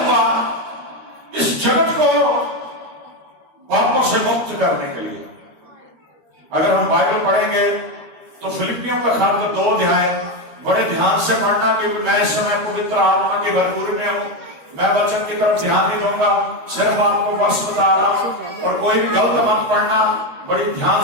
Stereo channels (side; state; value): left; late; 13 ms